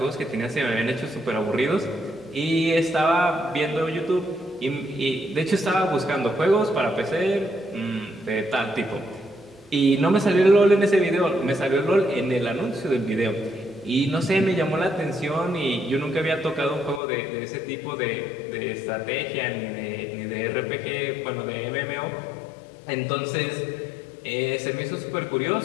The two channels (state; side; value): drops out; right; at 17.0 s